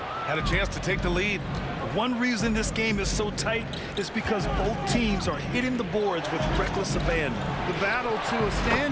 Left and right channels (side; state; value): both; identical; correlation 1.00